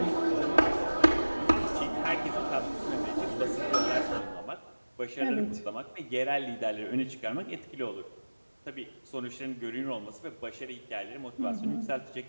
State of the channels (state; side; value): inverted; both; correlation -1.00